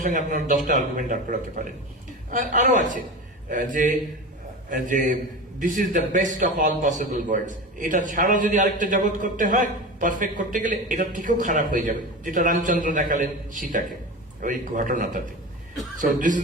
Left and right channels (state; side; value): normal; both; correlation 0.28